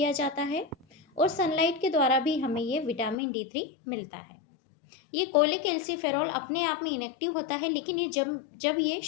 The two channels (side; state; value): right; drops out; at 3.2 s